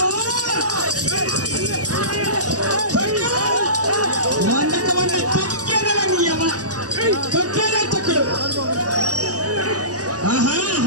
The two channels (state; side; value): late; left; 0.67 ms